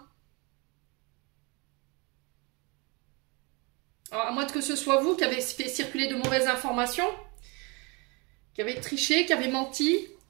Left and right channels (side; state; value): left; quieter; 29.1 dB